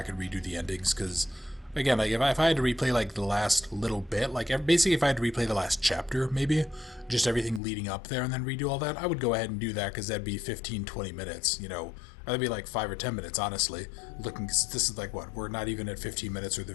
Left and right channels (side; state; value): right; drops out; at 7.6 s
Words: and redo the endings, because, again, like, if I had to replay, like, the last little bit, like, basically if I had to replay the last chapter, maybe, just everything leading up there and then redo all that, I would go ahead and do that, because that'd be 15-20 minutes, you know, or that'd be like 5 or 10 minutes, honestly, looking, because this is like, what, we're not even at 15 minutes worth